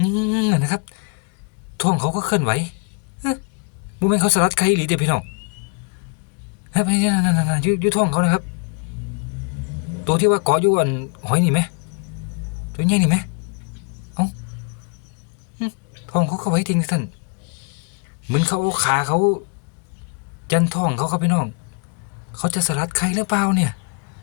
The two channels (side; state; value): right; quieter; 37.0 dB